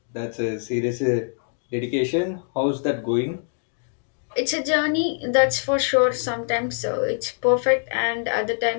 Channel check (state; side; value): silent; right; digital silence